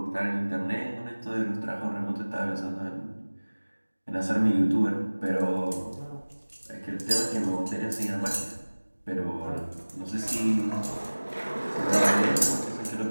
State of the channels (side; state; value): both; inverted; correlation -1.00